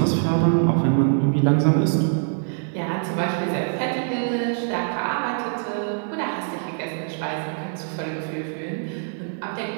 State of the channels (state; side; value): silent; left; 63 dB below the other